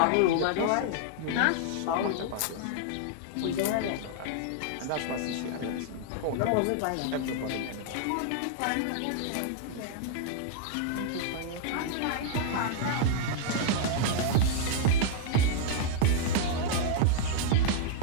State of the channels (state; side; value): different; both; correlation -0.01